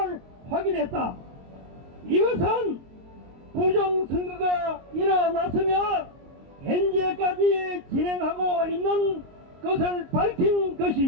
확인했다. 이것은 부정선거가 일어났으며 현재까지 진행하고 있는 것을 밝힌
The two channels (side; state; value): left; late; 22 ms